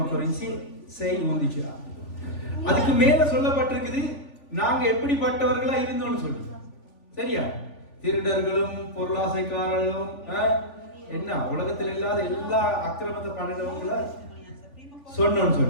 Corinzi 6:11. அதுக்கு மேல சொல்லப்பட்டிருக்குது நாங்க எப்படிப்பட்டவர்களா இருந்தோம்னு சொல்லி. சரியா? திருடர்களும் பொருளாசைக்காரர்களும் என்ன உலகத்தில் இல்லாத எல்லா அக்கிரமத்தை பண்ணினவங்கள சொன்னோம்னு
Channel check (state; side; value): late; right; 3.5 ms